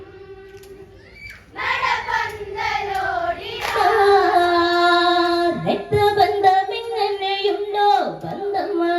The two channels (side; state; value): both; identical; correlation 1.00